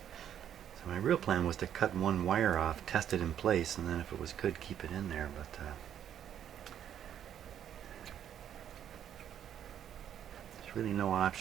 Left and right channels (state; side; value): quieter; left; 9.8 dB